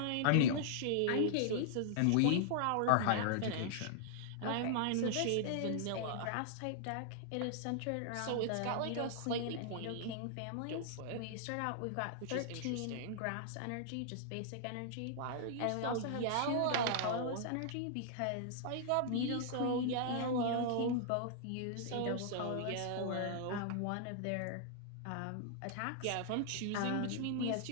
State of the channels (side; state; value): both; different; correlation -0.01